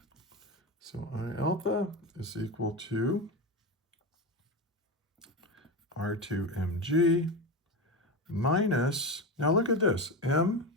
So I alpha is equal to R2 mg minus, now look at this, m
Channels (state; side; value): normal; both; correlation 0.19